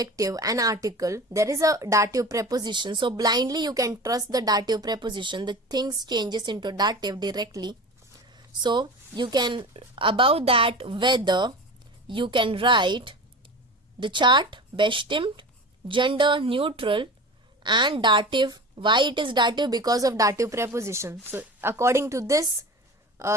and article there is a dative preposition. So blindly you can trust the dative preposition, the things changes into dative directly. So you can, above that whether, you can write the chart bestimmt, gender neutral, and dative. Why it is dative? Because of dative preposition. So according to this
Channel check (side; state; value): both; normal; correlation 0.33